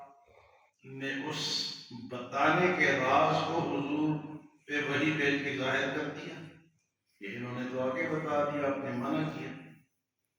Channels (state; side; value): identical; both; correlation 1.00